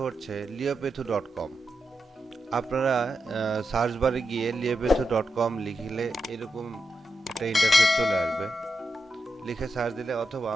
হচ্ছে liopethu.com। আপনারা সার্চ বারে গিয়ে liopethu.com লিখলে এরকম একটা ইন্টারফেস চলে আসবে। লিখে সার্চ দিলে অথবা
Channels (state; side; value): normal; both; correlation 0.87